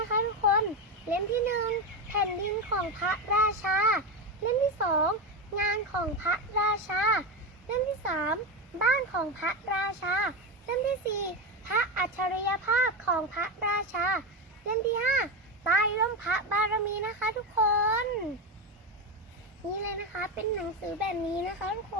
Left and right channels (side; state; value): both; normal; correlation 0.15